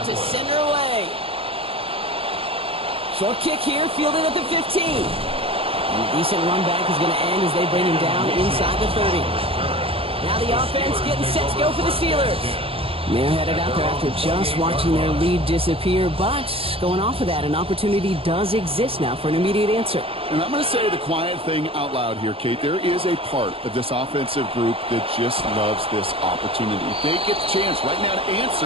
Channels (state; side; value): late; left; 0.27 ms